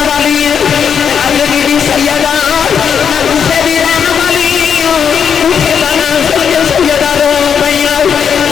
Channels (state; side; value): quieter; right; 7.3 dB